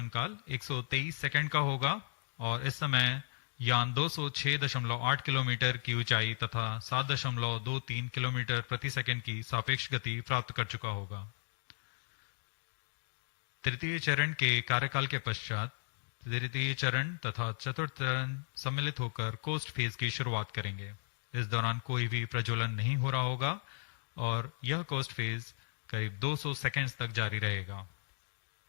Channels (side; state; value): right; silent; digital silence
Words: काल 123 सेकंड का होगा और इस समय यान 206.8 किलोमीटर की ऊंचाई तथा 7.23 किलोमीटर प्रति सेकंड की सापेक्ष गति प्राप्त कर चुका होगा। तृतीय चरण के कार्यकाल के पश्चात तृतीय चरण तथा चतुर्थ चरण सम्मिलित होकर कोस्ट फेज की शुरुआत करेंगे। इस दौरान कोई भी प्रज्वलन नहीं हो रहा होगा और यह कोस्ट फेज करीब 200 सेकंड्स तक जारी रहेगा।